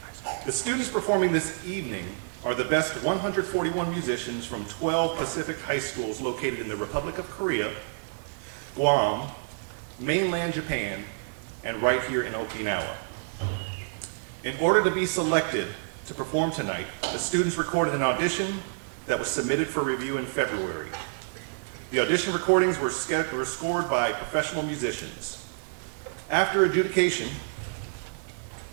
The students performing this evening are the best 141 musicians from 12 Pacific high schools located in the Republic of Korea, Guam, mainland Japan, and right here in Okinawa. In order to be selected to perform tonight, the students recorded an audition that was submitted for review in February. The audition recordings were scored by professional musicians. After adjudication,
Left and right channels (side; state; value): left; silent; digital silence